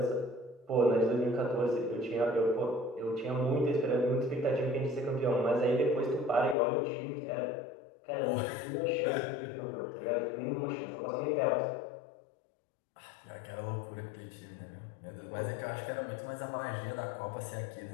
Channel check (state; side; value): drops out; right; at 6.6 s